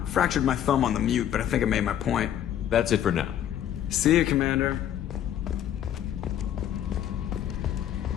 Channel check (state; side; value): quieter; right; 10.6 dB